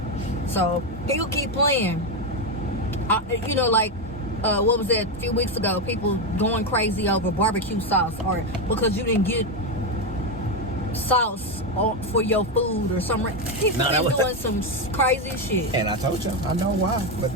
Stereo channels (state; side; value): normal; both; correlation 0.09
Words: So he'll keep playing. What was that a few weeks ago? People going crazy over barbecue sauce, or because you didn't get sauce for your food or something. People been doing some crazy shit. And I told you, I know why, but